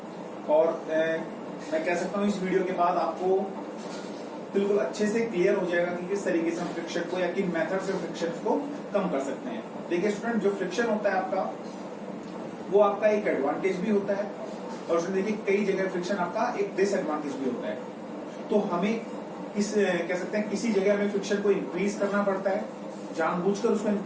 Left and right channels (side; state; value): both; identical; correlation 1.00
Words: और मैं कह सकता हूँ इस वीडियो के बाद आपको बिल्कुल अच्छे से क्लियर हो जाएगा कि किस तरीके से हम फ्रिक्शन को या किन मेथड से फ्रिक्शन को कम कर सकते हैं। देखिए स्टूडेंट, जो फ्रिक्शन होता है आपका, वो आपका एक एडवांटेज भी होता है और उसमें देखिए कई जगह फ्रिक्शन आपका एक डिसएडवांटेज भी होता है। तो हमें कह सकते हैं किसी जगह हमें फ्रिक्शन को इंक्रीज करना पड़ता है, जानबूझकर उसको